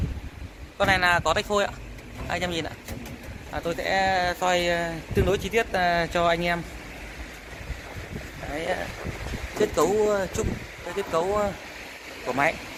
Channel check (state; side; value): identical; both; correlation 1.00